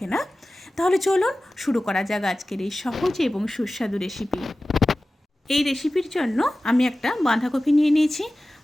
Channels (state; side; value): normal; both; correlation 0.96